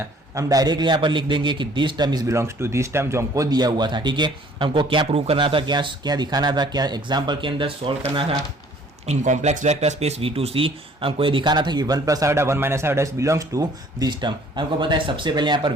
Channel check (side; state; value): both; normal; correlation 0.56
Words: हम डायरेक्टली यहाँ पर लिख देंगे कि this term is belongs to this term जो हमको दिया हुआ था, ठीक है। हमको क्या प्रूव करना था, क्या दिखाना था, क्या एग्जाम्पल के अंदर सॉल्व करना था। In complex vector space V2C हमको ये दिखाना था कि 1 plus iota 1 minus iota belongs to this term. हमको पता है सबसे पहले यहाँ पर